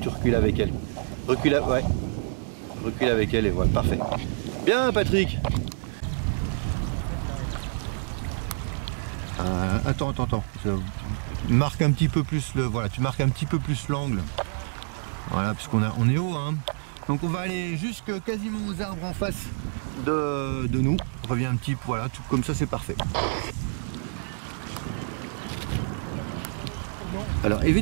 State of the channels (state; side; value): silent; left; digital silence